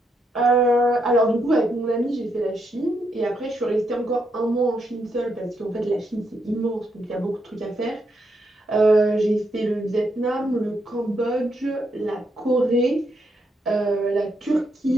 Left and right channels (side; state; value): both; normal; correlation 0.79